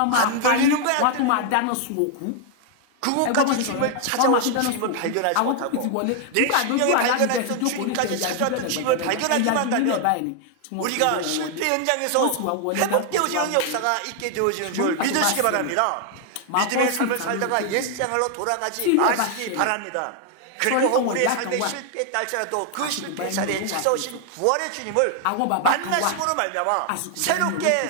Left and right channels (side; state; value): both; different; correlation 0.00